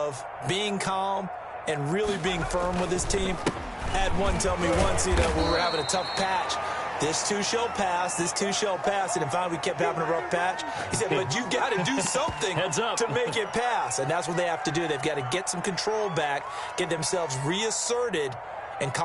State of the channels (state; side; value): identical; both; correlation 1.00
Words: being calm and really being firm with his team. I had one tell me once, when we were having a tough patch, This too shall pass. This too shall pass. And finally, we kept having a rough patch. He said, but you got to do something to make it pass. And that's what they have to do. They've got to get some control back, get themselves reasserted, and